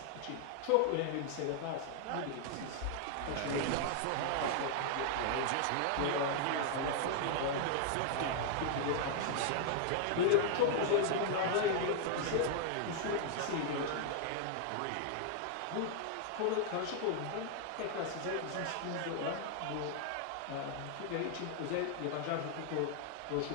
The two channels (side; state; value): both; different; correlation 0.00